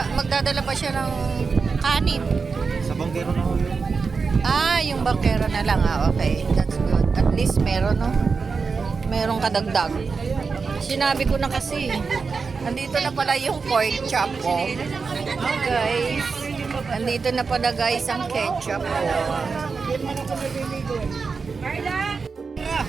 magdadala pa siya ng kanin. Sa banggero na ho yun. Ah, yung bakero na lang. Ah, okay. That's good. At least meron, no? Merong kadagdag. Sinabi ko na kasi. Nandito na pala yung pork chop ko. Oh, guys. Nandito na pala guys ang ketchup ko.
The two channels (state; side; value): quieter; left; 4.9 dB